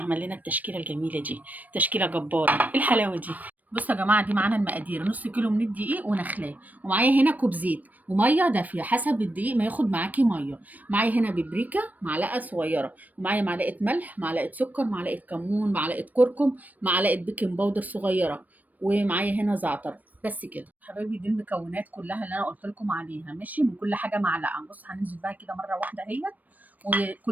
لنا التشكيله الجميله دي، تشكيله جباره. ايه الحلاوه دي؟ بصوا يا جماعه، دي معانا المقادير: نص كيلو من الدقيق ونخلاه، ومعايا هنا كوب زيت وميه دافيه حسب الدقيق ما ياخد معاكي ميه. معايا هنا ببريكه معلقه صغيره، ومعايا معلقه ملح، معلقه سكر، معلقه كمون، معلقه كركم، معلقه بيكنج باودر صغيره، ومعايا هنا زعتر. بس كده حبايبي، دي المكونات كلها اللي انا قلت لكم عليها. ماشي، من كل حاجه معلقه. بص، هننزل بقى كده مره واحده اهيت،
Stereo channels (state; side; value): late; left; 0.080 ms